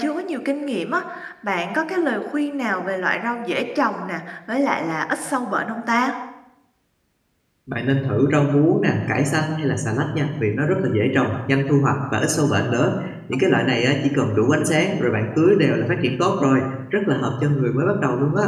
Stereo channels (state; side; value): identical; both; correlation 1.00